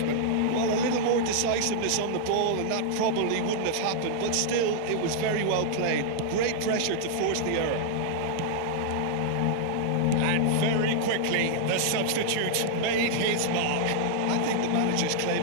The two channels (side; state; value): both; different; correlation -0.01